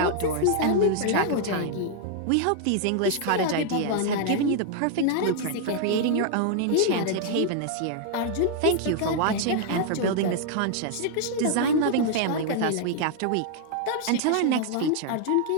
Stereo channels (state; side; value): different; both; correlation 0.00